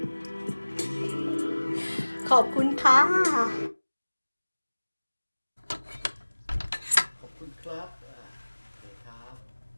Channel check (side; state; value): both; inverted; correlation -1.00